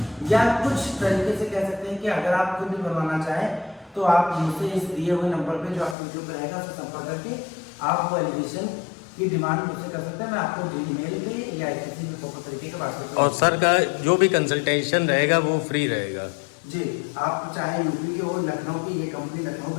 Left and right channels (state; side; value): drops out; right; at 6.0 s